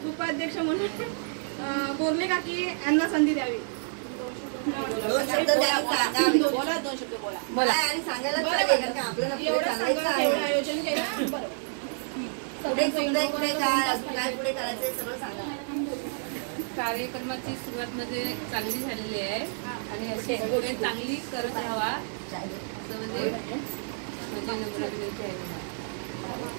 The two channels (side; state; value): left; silent; digital silence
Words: उपाध्यक्ष म्हणून बोलले का की यांना संधी द्यावी. 2 शब्द बोला. 2 शब्द बोला आणि सांगायला आयोजन केलं. बरोबर पुढे काय करायचंय सगळं सांगा. कार्यक्रमाची सुरुवात म्हणजे चांगली झालेली आहे आणि अशी पुढे चांगली करत राहावा असं म्हणजे नम्र विनंती आहे.